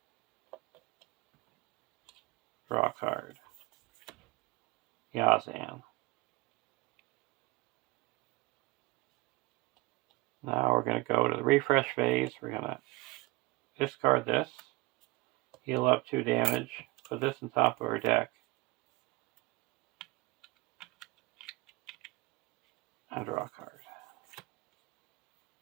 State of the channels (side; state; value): left; quieter; 21.9 dB